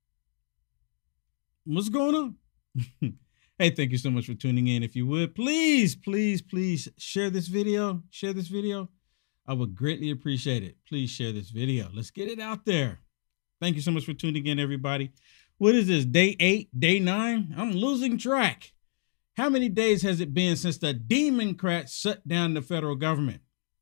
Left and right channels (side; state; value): right; silent; digital silence